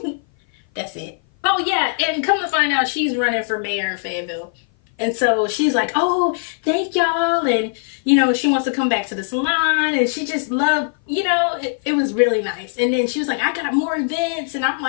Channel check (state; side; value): silent; right; 57 dB below the other